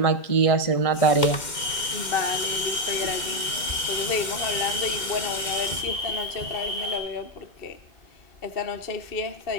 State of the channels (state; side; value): late; right; 2.1 ms